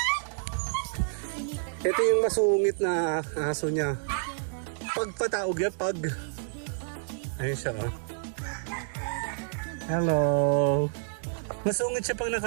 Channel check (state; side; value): silent; left; digital silence